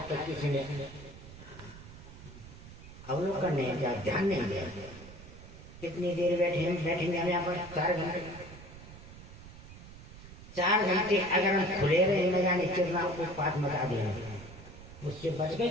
तक किसी ने अवलोकन नहीं किया, ध्यान नहीं दिया। कितनी देर बैठेंगे हम यहाँ पर? 4 घंटे। 4 घंटे अगर हम खुले रहे न जाने कितना उत्पात मचा देंगे, उससे बच गए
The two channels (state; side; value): noise; right; rumble, 16 dB below the sound